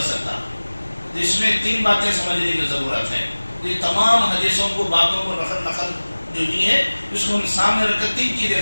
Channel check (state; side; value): inverted; both; correlation -1.00